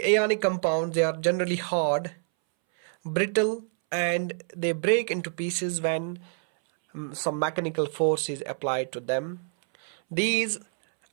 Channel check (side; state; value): left; silent; 60 dB below the other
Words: ionic compounds, they are generally hard, brittle, and they break into pieces when some mechanical force is applied to them. These